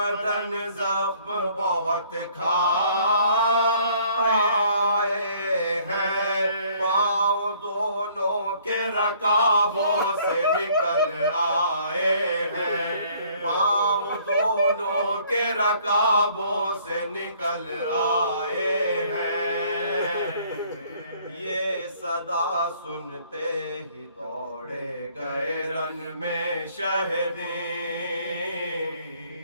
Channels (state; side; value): inverted; both; correlation -0.60